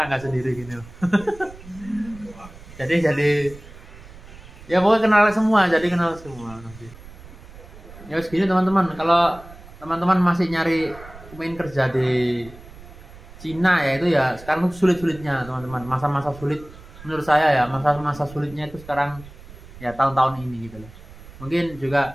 sendiri gini. jadi ya pokoknya kenal semua nanti. Ya segini teman-teman. Kalau teman-teman masih nyari main kerja di Cina ya itu ya sekarang sulit-sulitnya teman-teman. Masa-masa sulit menurut saya ya, masa sulitnya itu sekarang ya tahun-tahun ini gitu loh. Mungkin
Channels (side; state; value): right; noise; rumble, 18 dB below the sound